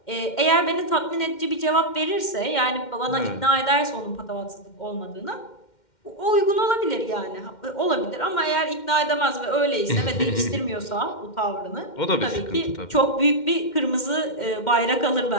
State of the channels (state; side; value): late; right; 2.1 ms